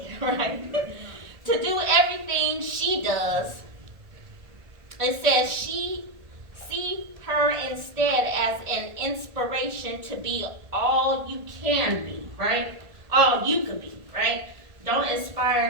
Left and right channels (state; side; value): late; left; 1.9 ms